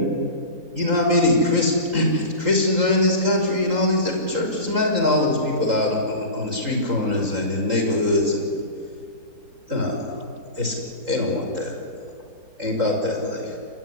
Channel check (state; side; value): late; left; 3.8 ms